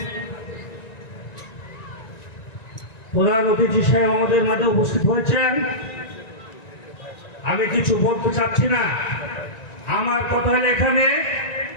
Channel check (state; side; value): late; right; 1.9 ms